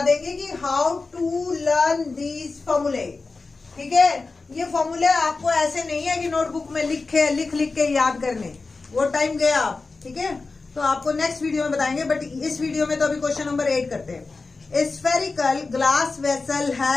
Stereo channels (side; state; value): right; quieter; 3.9 dB